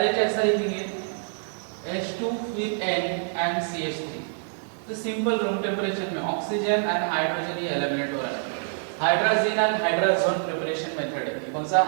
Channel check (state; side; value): silent; left; digital silence